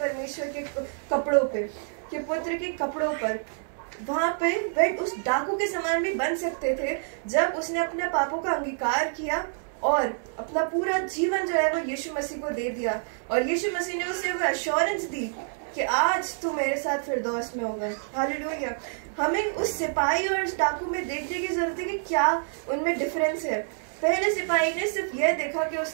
के कपड़ों पे, के पुत्र के कपड़ों पर, वहां पे वे उस डाकू के समान भी बन सकते थे जब उसने अपने पापों का अंगीकार किया और अपना पूरा जीवन जो है वो यीशु मसीह को दे दिया, और यीशु मसीह ने उसे वो एश्योरेंस दी कि आज तू मेरे साथ फिरदौस में होगा। हालेलुया। हमें उस सिपाही और उस डाकू में देखने की जरूरत है कि क्या उनमें डिफरेंस है। पहले सिपाही ने सिर्फ यह देखा कि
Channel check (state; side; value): silent; left; digital silence